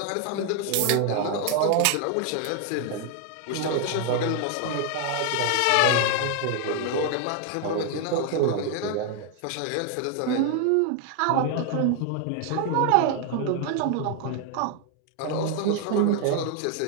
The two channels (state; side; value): different; both; correlation 0.00